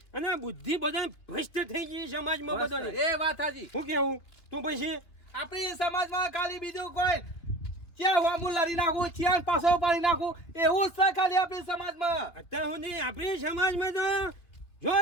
અને બુદ્ધિ બધા ભ્રષ્ટ થઈ ગઈ સમાજમાં બધાને. એ વાત સાચી. શું કેવું તું પછી આપણી સમાજમાં ખાલી બીજું કોઈ ક્યાં વામું લડી નાખું ક્યાં પાછો પાડી નાખું એવું જ છે ખાલી આપણી સમાજમાં. અત્યાર સુધી આપણી સમાજમાં તો જો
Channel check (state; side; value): late; right; 3.0 ms